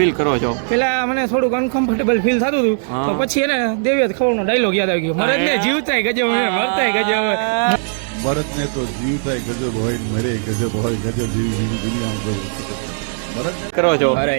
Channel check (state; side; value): silent; left; 67 dB below the other